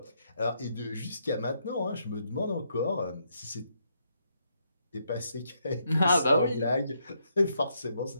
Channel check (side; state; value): both; inverted; correlation -0.76